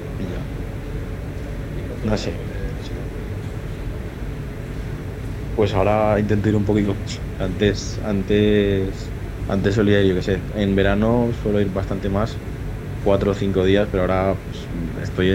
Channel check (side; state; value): both; identical; correlation 1.00